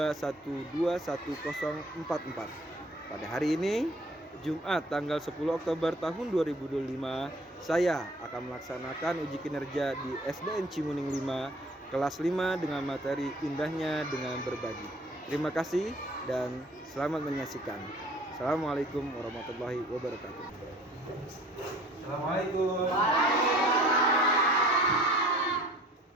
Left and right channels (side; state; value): both; normal; correlation 0.51